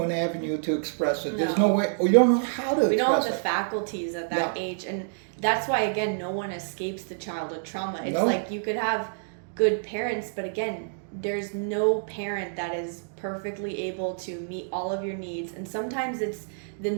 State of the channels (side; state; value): left; silent; digital silence